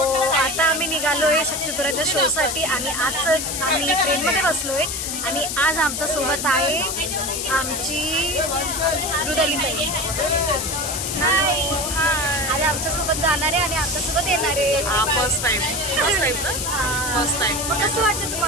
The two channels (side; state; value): left; noise; hiss, 3 dB below the sound